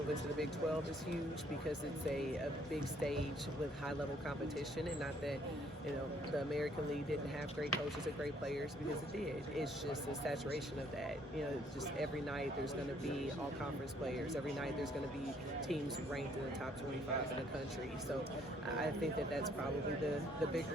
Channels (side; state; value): both; normal; correlation 0.65